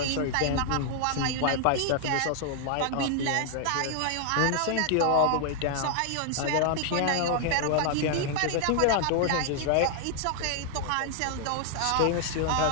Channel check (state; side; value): different; both; correlation 0.00